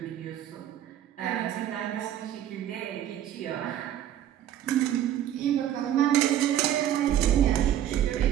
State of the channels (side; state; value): left; quieter; 11.2 dB